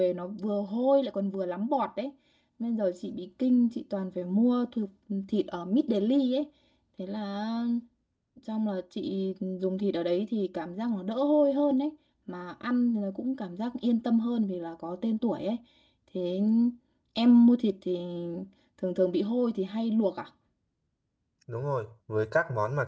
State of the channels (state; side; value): identical; both; correlation 1.00